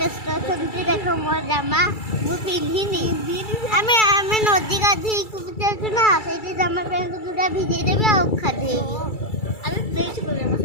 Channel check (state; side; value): late; right; 2.3 ms